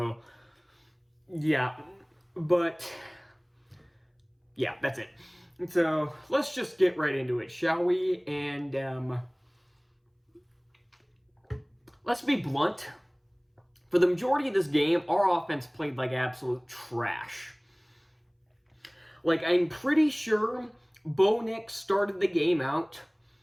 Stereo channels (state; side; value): identical; both; correlation 1.00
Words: yeah, but yeah, that's it. So let's just get right into it, shall we? And let's be blunt. For the majority of this game, our offense played like absolute trash. Like, I'm pretty sure Bo Nix started the game out